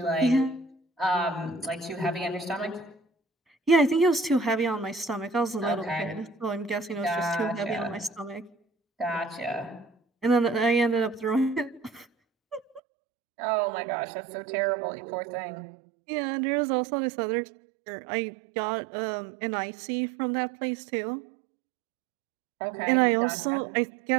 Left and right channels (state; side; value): drops out; left; at 12.8 s